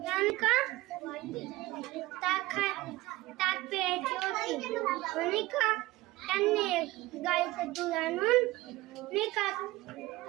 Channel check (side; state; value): left; quieter; 19.1 dB